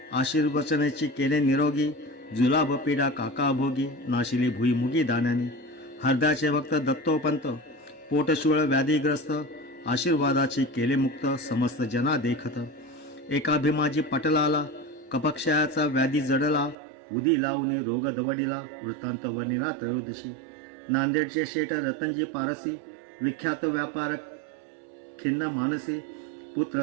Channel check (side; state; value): left; drops out; at 16.8 s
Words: आशीर्वचनेची केले निरोगी. जुलाब पीडा काका भोगी, नाशिली भुईमुगी दाण्याने. हरदाचे भक्त दत्तोपंत, पोटशूळ व्याधीग्रस्त. आशीर्वादाची केले मुक्त, समस्त जना देखत. एका भीमाजी पटलाला, कपक्षयाचा व्याधी जडला. उदी लावून रोग दवडिला, वृत्तांत वर्णिला त्रयोदशी. नांदेडचे शेठ रतनजी पारसी, विख्यात व्यापारक खिन्न मानसी. पुत्र